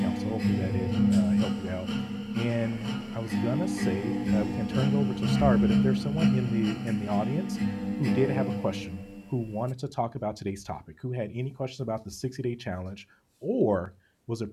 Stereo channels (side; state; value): both; identical; correlation 1.00